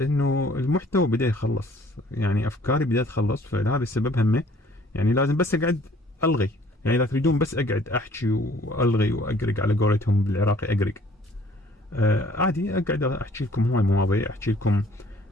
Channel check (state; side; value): normal; both; correlation 0.57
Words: المحتوى بدا يخلص، يعني افكاري بدات تخلص، فهذا السبب همه. يعني لازم بس اقعد الغي، يعني اذا تريدون بس اقعد احكي والغي واقرق، على قولتهم بالعراقي اقرق. عادي اقعد احكي لكم هواي مواضيع، احكي لكم